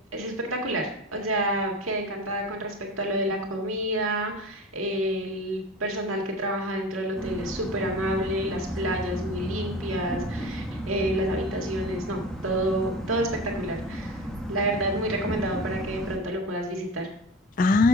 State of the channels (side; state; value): both; normal; correlation 0.33